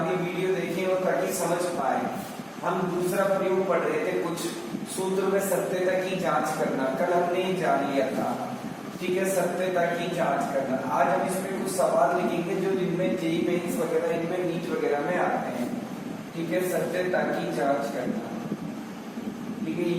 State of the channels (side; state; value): both; identical; correlation 1.00